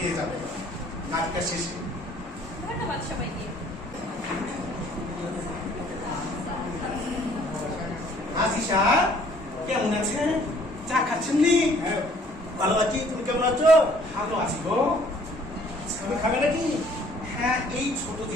যাবেন নাচটা শেষে। ধন্যবাদ সবাইকে। আজিশা কেমন আছেন? চা খাচ্ছেন নি? ভালো আছি, তুমি কেমন আছো? ভালো আছি গো। তুমি খাবে নাকি? হ্যাঁ, এই ছোট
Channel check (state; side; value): normal; both; correlation 0.58